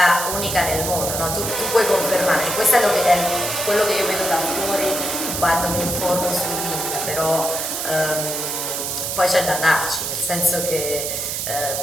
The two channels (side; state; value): right; noise; hiss, 3 dB below the sound